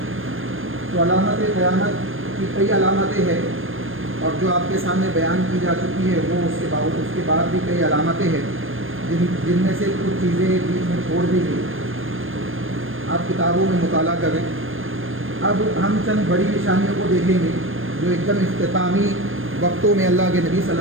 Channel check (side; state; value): left; late; 0.59 ms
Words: تو علامت قیامت کی کئی علامتیں ہیں، اور جو آپ کے سامنے بیان کی جا چکی ہے وہ اس کے بعد بھی کئی علامتیں ہیں جن میں سے کچھ چیزیں بیچ میں چھوڑ دی گئی، آپ کتابوں میں مطالعہ کریں۔ اب ہم چند بڑی نشانیوں کو دیکھیں گے جو ایک دم اختتامی وقتوں میں اللہ کے نبی صلی